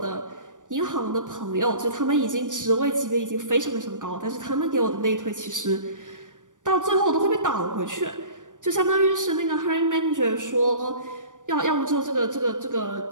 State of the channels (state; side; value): late; left; 0.87 ms